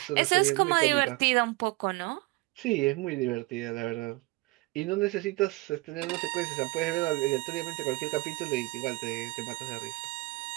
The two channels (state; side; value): quieter; left; 23.7 dB